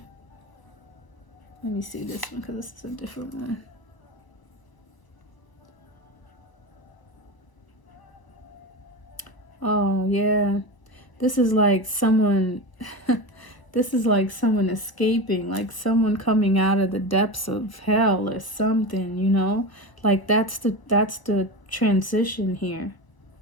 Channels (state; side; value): late; right; 1.0 ms